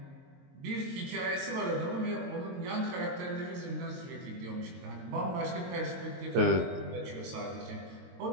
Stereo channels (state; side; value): late; left; 22 ms